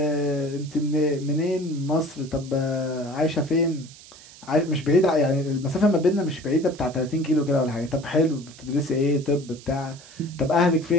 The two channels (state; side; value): noise; right; hiss, 20 dB below the sound